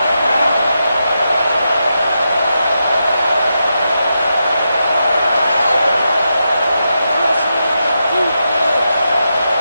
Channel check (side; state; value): both; inverted; correlation -0.86